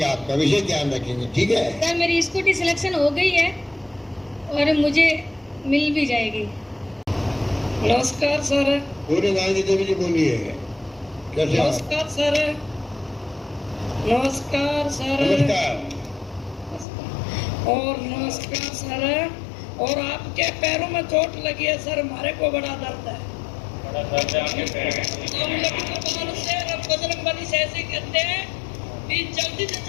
आपका विशेष ध्यान रखेंगे, ठीक है। सर मेरी स्कूटी सिलेक्शन हो गई है और मुझे मिल भी जाएगी। नमस्कार सर। पूरे गांधी देवी जी बोलिए, कैसे हो? नमस्कार सर। नमस्कार सर। नमस्कार। और नमस्कार सर। और आपके पैरों में चोट लगी है सर, हमारे को बड़ा दर्द है। हम लखनऊ से बजरंग बली से ऐसे कहते हैं कि जल्दी से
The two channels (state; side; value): drops out; right; at 16.9 s